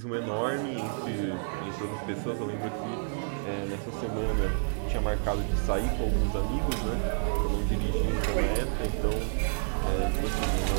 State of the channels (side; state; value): left; silent; digital silence